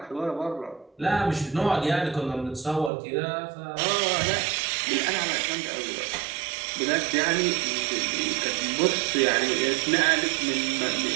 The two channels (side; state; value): left; drops out; at 2.9 s